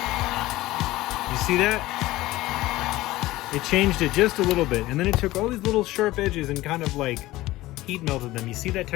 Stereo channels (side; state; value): right; quieter; 17.6 dB